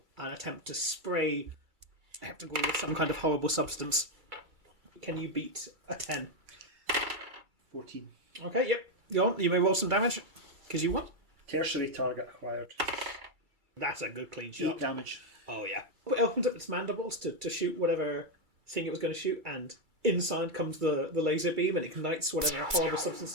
and attempt to spray Heptagruel with some kind of horrible substance. Can you beat a 10? 14. Okay, yep. Go on. You may roll some damage, because you won. Tertiary target acquired. That's a good clean 8 shot. damage. Oh, yeah. It opens up its mandibles to shoot whatever thing it was going to shoot, and inside comes the laser beam, and it ignites whatever horrible substance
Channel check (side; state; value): left; late; 2.3 ms